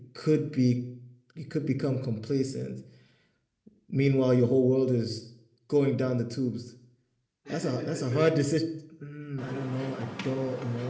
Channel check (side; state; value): both; identical; correlation 1.00